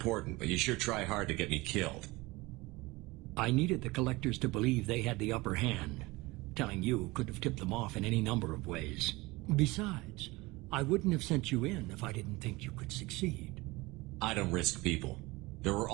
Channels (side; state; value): left; quieter; 22.1 dB